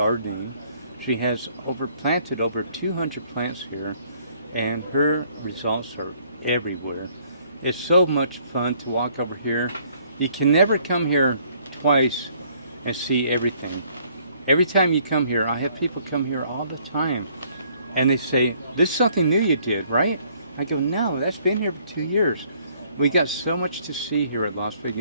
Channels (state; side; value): inverted; both; correlation -0.63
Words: She has planted over 200 plants here, and her results are everywhere. It's so much fun to walk over here. You can never come here twice and see everything. Every time you come here, I have people come here all the time, and they say, "This is something new you did, right?" I go, "No, that's been here for 2 years." We got so much to see here at Las